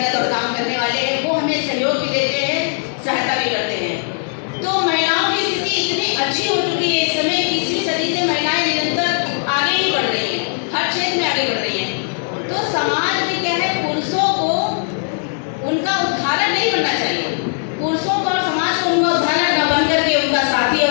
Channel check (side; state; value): right; silent; 58 dB below the other